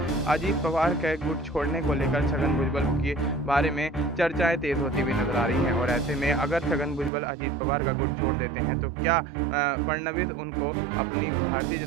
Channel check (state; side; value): drops out; left; at 7.1 s